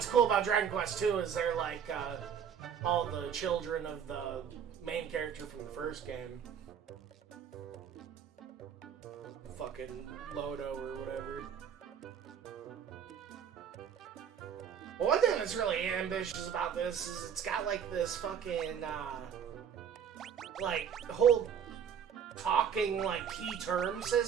cool about Dragon Quest 2 is they're like all the children of the main character from the first game. Fucking Lodo or whatever. Well, one thing that's really ambitious about this is it's got like this fucking like whole talking like key term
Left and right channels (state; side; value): quieter; left; 8.0 dB